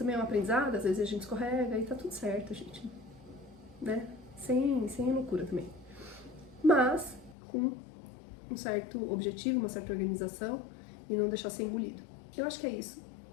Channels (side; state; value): right; drops out; at 7.4 s